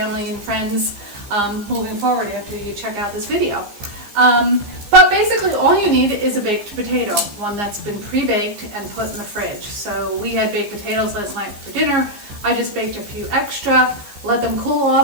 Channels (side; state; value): left; late; 15 ms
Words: and friends moving forward after you check out this video. But basically all you need is a baked potato, one that's been pre-baked and put in the fridge. So we had baked potatoes last night for dinner. I just baked a few extra, let them cool